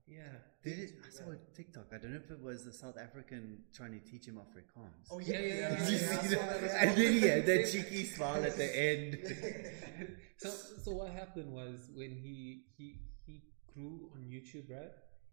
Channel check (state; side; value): silent; left; digital silence